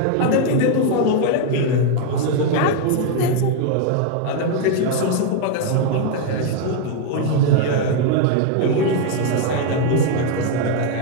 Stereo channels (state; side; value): different; both; correlation 0.01